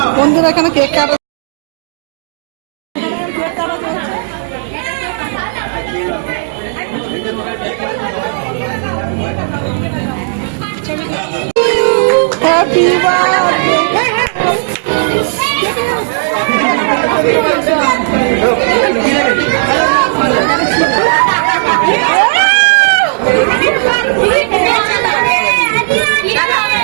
বন্ধুরা এখানে কেক কাটা হ্যাপি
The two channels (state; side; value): silent; left; digital silence